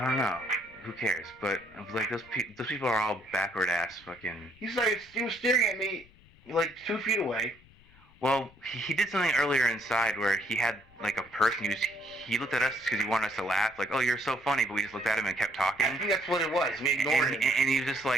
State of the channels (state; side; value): noise; left; rumble, 27 dB below the sound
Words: don't know. Who cares? But like those people are all backward ass fucking. He was staring at me like 2 feet away. Well, he did something earlier inside where he had like a purse and he looked at us because he wanted us to laugh. Like, oh, you're so funny, but we just looked at him and kept talking. I think that's what it was. We ignored him. And he was just